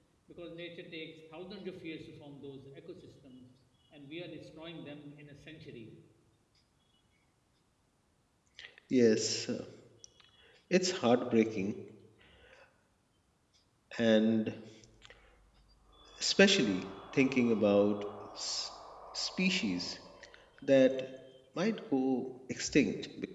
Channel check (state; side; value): identical; both; correlation 1.00